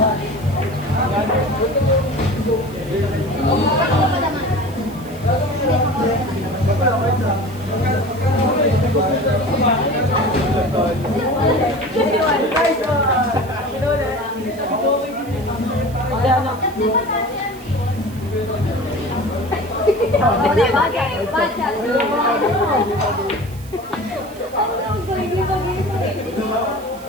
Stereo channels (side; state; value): right; noise; hiss, 22 dB below the sound